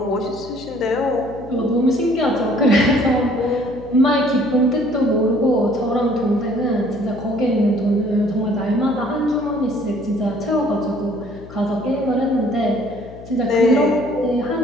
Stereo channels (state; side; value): noise; left; hum, 17 dB below the sound